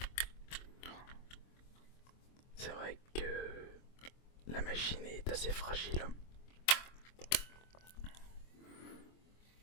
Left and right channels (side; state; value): right; late; 24 ms